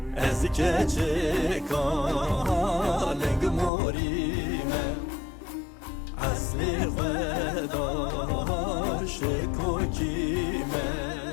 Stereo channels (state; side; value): drops out; right; at 3.7 s